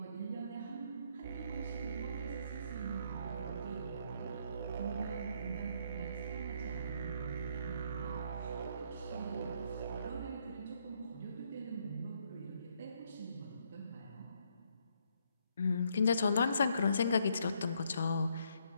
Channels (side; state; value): both; inverted; correlation -0.72